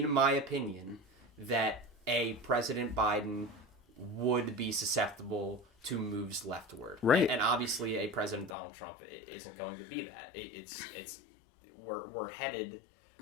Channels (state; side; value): drops out; right; at 8.5 s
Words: my opinion, that a President Biden would be susceptible to moves leftward. Right. And obviously a President Donald Trump isn't going to be that. We're headed